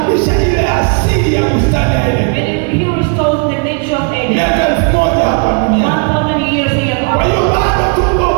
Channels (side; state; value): left; quieter; 36.9 dB